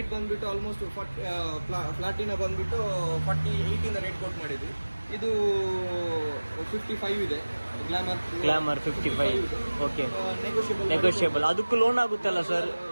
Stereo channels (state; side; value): inverted; both; correlation -1.00